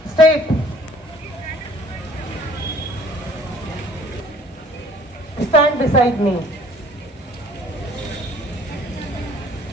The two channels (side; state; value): both; normal; correlation 0.54